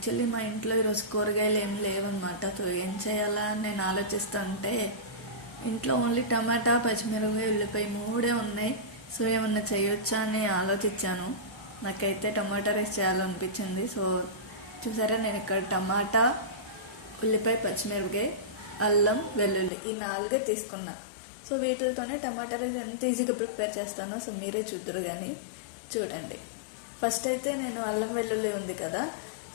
మా ఇంట్లో ఈరోజు కూరగాయలు ఏం లేవన్నమాట. సో ఏం చేయాలా అని నేను ఆలోచిస్తుంటే ఇంట్లో ఓన్లీ టమాటా, పచ్చిమిరపకాయ, ఉల్లిపాయ మూడే ఉన్నాయి. సో ఏమన్నా చేయొచ్చా అని ఆలోచించాను. నాకైతే టమాటా రైస్ చేయాలనిపించింది. సో చూసారా, నేను ఇక్కడ టమాటా, ఉల్లిపాయ, పచ్చిమిరపకాయ, అల్లం, వెల్లుల్లి ఈ 4 తీసుకున్నా. సో వీటితోనే టమాటా రైస్ ఎంత ఈజీగా ప్రిపేర్ చేస్తానో సో మీరే చూద్దరు కానీ చూడండి. ఫస్ట్ అయితే నేను అల్లం వెల్లుల్లి ఉంది కదా,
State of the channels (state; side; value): drops out; right; at 19.7 s